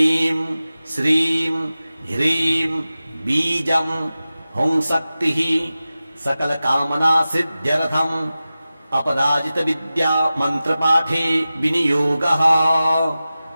श्रीं ह्रीं बीजं हुं शक्तिः सकल कामना सिद्ध्यर्थम अपराजित विद्या मंत्र पाठे विनियोगः।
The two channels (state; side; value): inverted; both; correlation -0.95